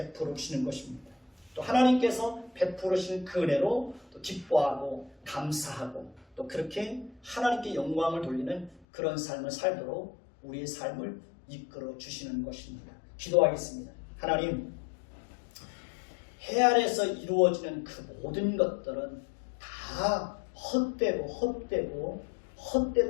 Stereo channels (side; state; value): right; drops out; at 8.8 s